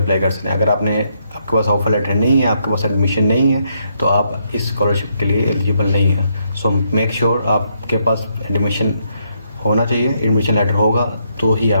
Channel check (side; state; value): both; inverted; correlation -0.76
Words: अप्लाई कर सकते हैं। अगर आपके पास ऑफर लेटर नहीं है, आपके पास एडमिशन नहीं है, तो आप इस स्कॉलरशिप के लिए एलिजिबल नहीं है। सो मेक श्योर आपके पास एडमिशन होना चाहिए। एडमिशन लेटर होगा तो ही